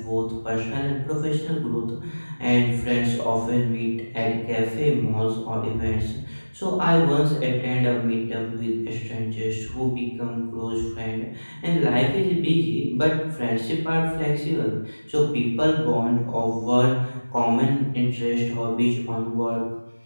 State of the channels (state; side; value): inverted; both; correlation -1.00